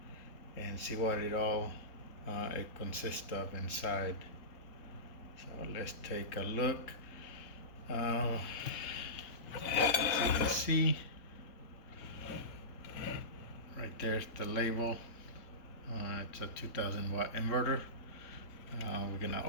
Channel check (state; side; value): late; right; 4.0 ms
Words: and see what it consists of inside. So let's take a look. As you can see, right there's the label. It's a 2000 watt inverter. We're gonna